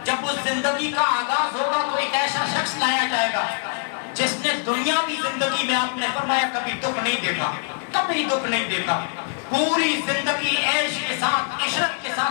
جب اس زندگی کا آغاز ہوگا تو ایک ایسا شخص لایا جائے گا جس نے دنیاوی زندگی میں، آپ نے فرمایا کبھی دکھ نہیں دیکھا، کبھی دکھ نہیں دیکھا، پوری زندگی عیش کے ساتھ، عشرت کے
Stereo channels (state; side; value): silent; right; 63 dB below the other